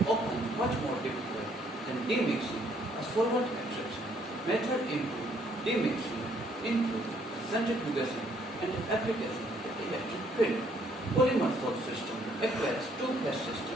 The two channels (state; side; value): normal; both; correlation 0.66